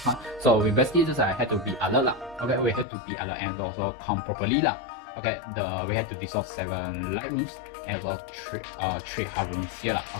So we basically just had to be alert lah. Okay, we had to be alert and also count properly lah. Okay, we had to dissolve 7 light rooms and also 3 hard rooms here.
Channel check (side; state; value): right; drops out; at 2.9 s